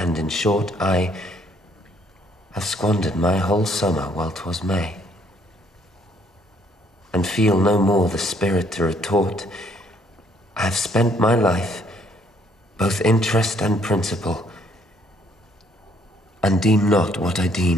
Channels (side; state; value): both; normal; correlation 0.66